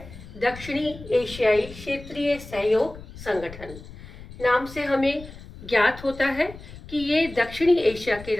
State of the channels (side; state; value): left; noise; rumble, 16 dB below the sound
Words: दक्षिणी एशियाई क्षेत्रीय सहयोग संगठन। नाम से हमें ज्ञात होता है कि ये दक्षिणी एशिया के